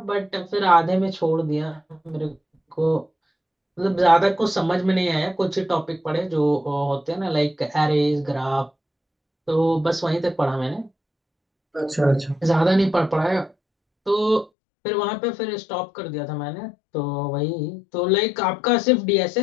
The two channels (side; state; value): right; drops out; at 14.5 s